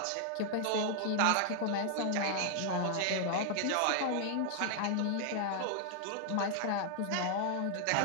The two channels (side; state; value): both; different; correlation 0.00